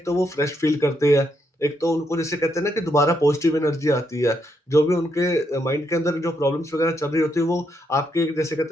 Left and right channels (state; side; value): normal; both; correlation 0.78